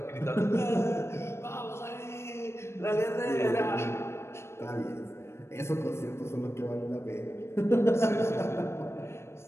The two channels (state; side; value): late; right; 0.13 ms